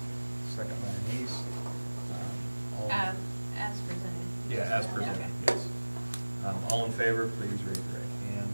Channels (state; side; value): inverted; both; correlation -1.00